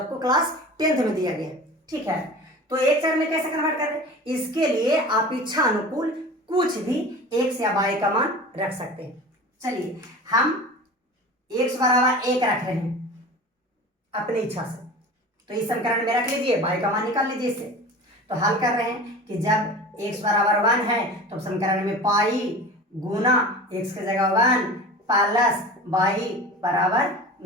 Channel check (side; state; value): both; normal; correlation 0.36